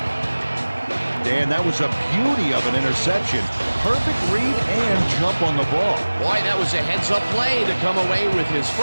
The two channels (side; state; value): both; inverted; correlation -1.00